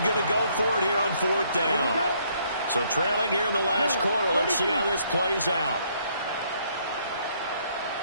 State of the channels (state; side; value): inverted; both; correlation -0.68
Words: going to go for it here on fourth down. So trailing here in the last quarter. Let's see how this plays out.